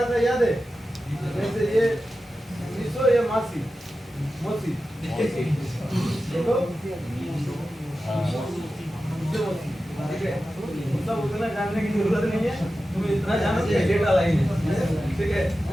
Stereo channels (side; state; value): both; normal; correlation 0.93